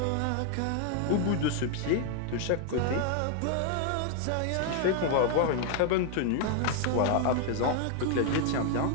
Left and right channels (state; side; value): different; both; correlation 0.00